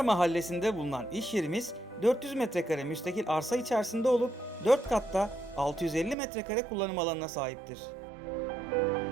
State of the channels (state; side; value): drops out; left; at 6.2 s